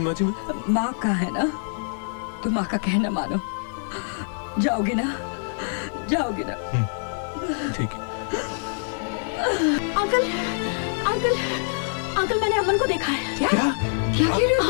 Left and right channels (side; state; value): right; silent; digital silence